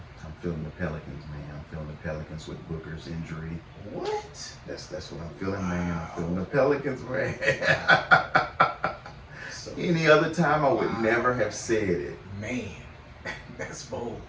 I'm feeling the Pelicans, man. I'm feeling the Pelicans with Booker's injury. What? feeling, man. I'm feeling the Pelicans, man. So, Any other time, I would never have said it. man, that's bold.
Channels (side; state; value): both; identical; correlation 1.00